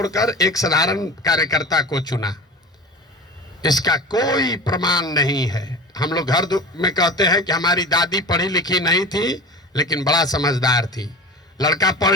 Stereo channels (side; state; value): both; normal; correlation 0.34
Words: एक साधारण कार्यकर्ता को चुना। इसका कोई प्रमाण नहीं है। हम लोग घर में कहते हैं कि हमारी दादी पढ़ी लिखी नहीं थी लेकिन बड़ा समझदार थी, लड़का पढ़